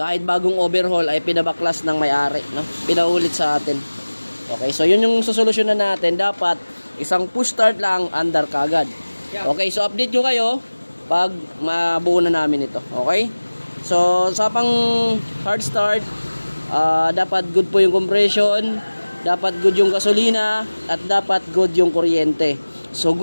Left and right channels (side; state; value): both; inverted; correlation -1.00